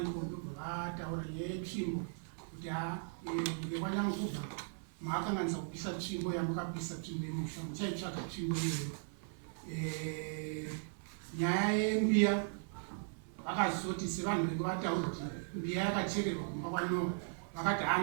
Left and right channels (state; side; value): silent; left; 53 dB below the other